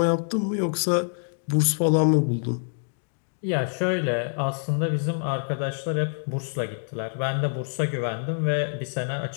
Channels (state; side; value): silent; right; digital silence